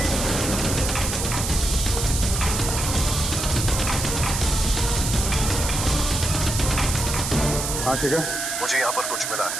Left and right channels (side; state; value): right; noise; hiss, 3 dB below the sound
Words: हाँ ठीक है, मुझे यहाँ पर कुछ मिला